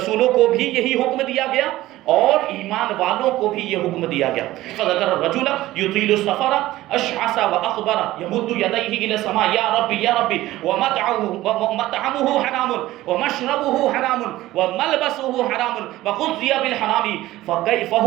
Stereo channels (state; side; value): quieter; left; 16.3 dB